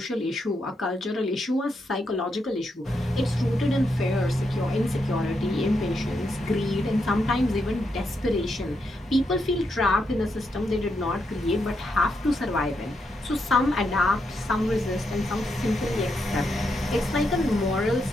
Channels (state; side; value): normal; both; correlation 0.81